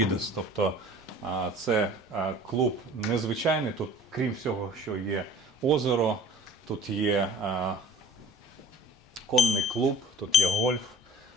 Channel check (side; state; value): both; normal; correlation 0.46